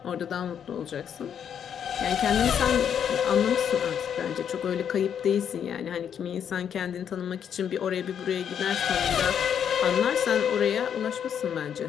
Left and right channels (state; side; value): quieter; right; 8.4 dB